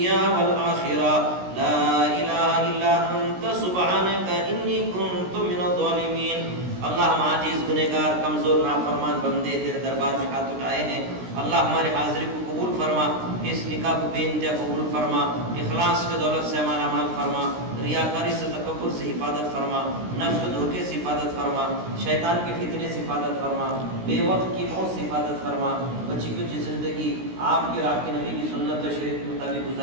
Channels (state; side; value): late; left; 16 ms